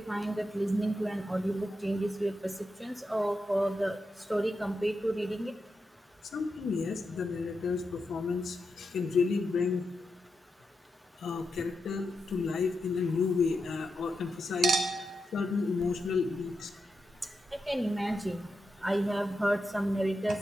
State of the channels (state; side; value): normal; both; correlation 0.87